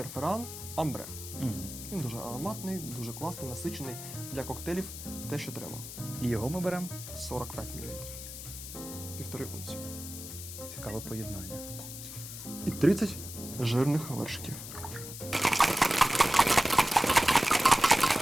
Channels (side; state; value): left; noise; hiss, 10 dB below the sound